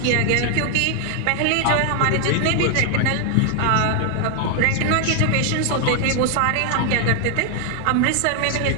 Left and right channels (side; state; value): both; different; correlation 0.00